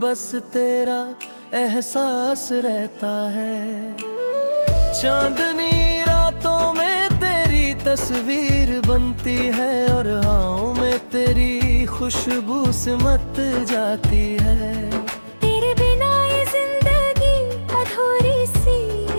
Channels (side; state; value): both; inverted; correlation -1.00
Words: तेरा एहसास रहता है। चांदनी रातों में तेरी तस्वीर बनती है और हवाओं में तेरी खुशबू सिमट जाती है। तेरे बिना ये जिंदगी अधूरी सी